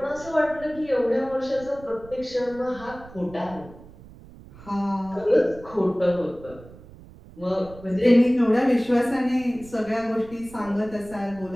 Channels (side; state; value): right; noise; rumble, 19 dB below the sound